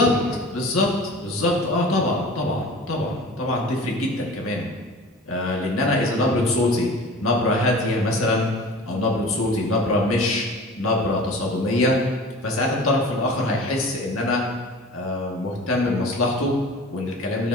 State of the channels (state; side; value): normal; both; correlation 0.40